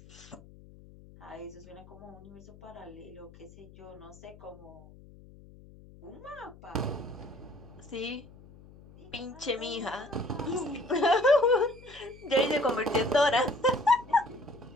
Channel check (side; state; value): left; noise; hum, 21 dB below the sound